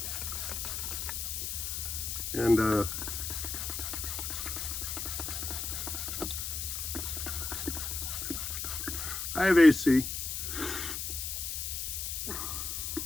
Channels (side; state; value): left; noise; hiss, 3 dB below the sound